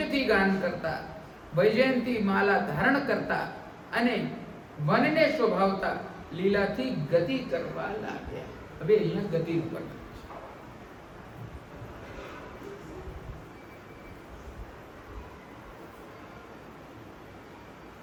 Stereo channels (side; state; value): both; identical; correlation 1.00